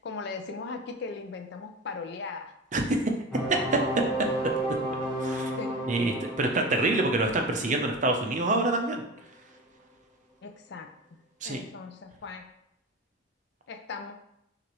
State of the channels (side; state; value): both; normal; correlation 0.30